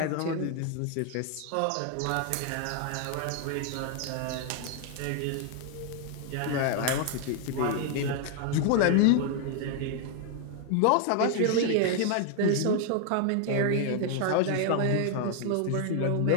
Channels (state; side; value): different; both; correlation 0.00